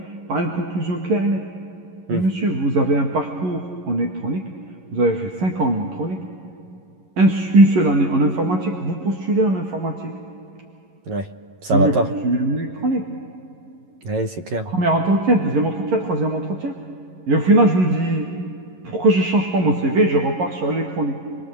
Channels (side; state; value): left; late; 11 ms